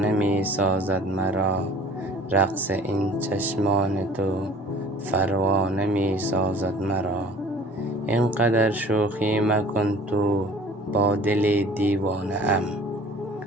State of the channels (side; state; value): both; normal; correlation 0.48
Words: می سازد مرا. رقص این چشمان تو پروانه می سازد مرا. اینقدر شوخی مکن تو با دل دیوانه ام.